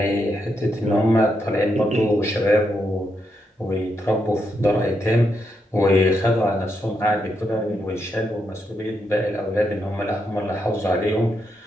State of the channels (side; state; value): both; normal; correlation 0.81